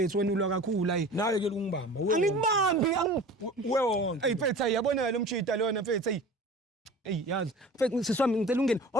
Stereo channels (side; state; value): both; normal; correlation 0.40